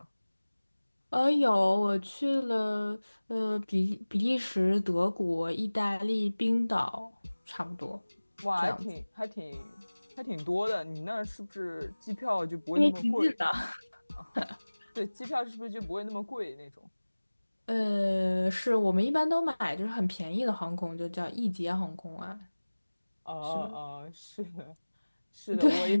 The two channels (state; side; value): inverted; both; correlation -1.00